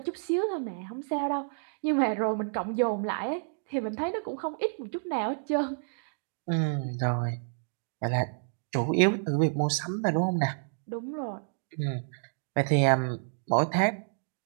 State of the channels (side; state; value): left; silent; digital silence